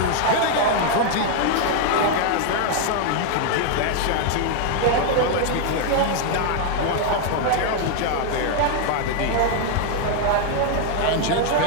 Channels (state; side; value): different; both; correlation 0.00